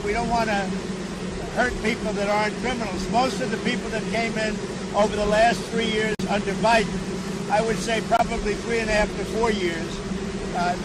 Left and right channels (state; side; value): identical; both; correlation 1.00